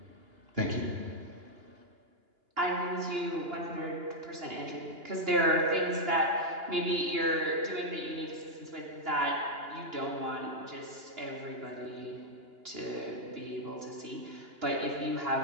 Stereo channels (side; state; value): left; late; 2.9 ms